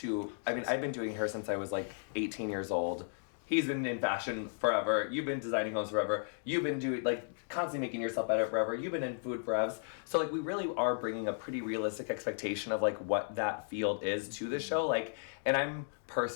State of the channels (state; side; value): silent; right; digital silence